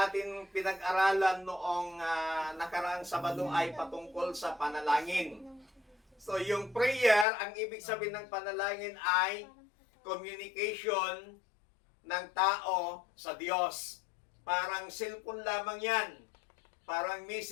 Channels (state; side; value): drops out; right; at 7.2 s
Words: pinag-aralan noong nakaraang Sabado ay patungkol sa panalangin. So yung prayer, ang ibig sabihin ng panalangin ay communication ng tao sa Diyos. Parang cellphone lamang yan. Parang